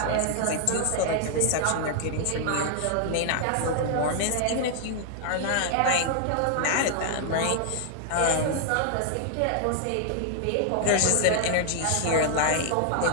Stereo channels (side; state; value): both; different; correlation 0.00